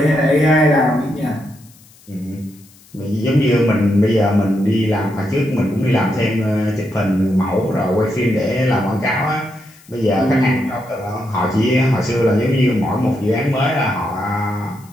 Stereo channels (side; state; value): left; noise; hiss, 27 dB below the sound